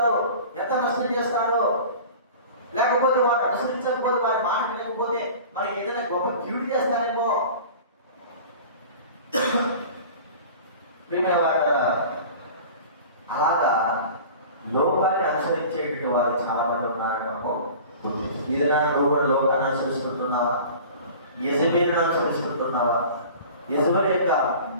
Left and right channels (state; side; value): inverted; both; correlation -0.40